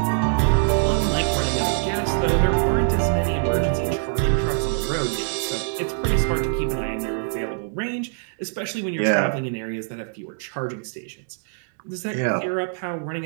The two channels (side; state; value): left; silent; digital silence